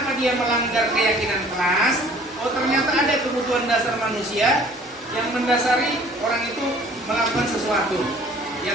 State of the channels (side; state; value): both; normal; correlation 0.53